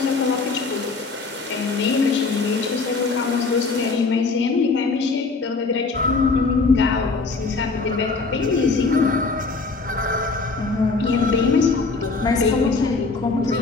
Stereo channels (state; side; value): quieter; right; 4.1 dB